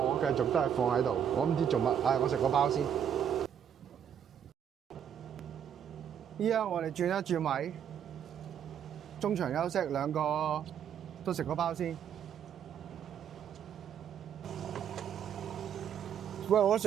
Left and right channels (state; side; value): quieter; left; 8.7 dB